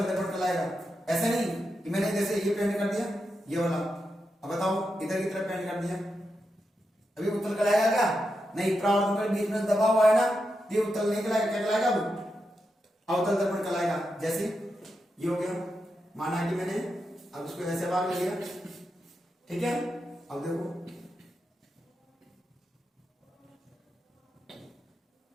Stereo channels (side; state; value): both; normal; correlation 0.87